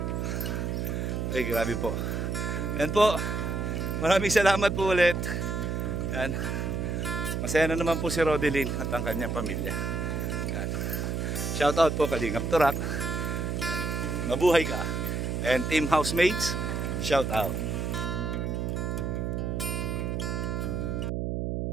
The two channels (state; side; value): noise; right; hum, 1 dB below the sound